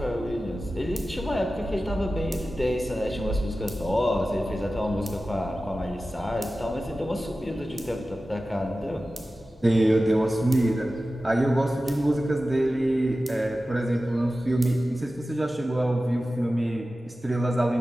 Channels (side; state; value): both; normal; correlation 0.95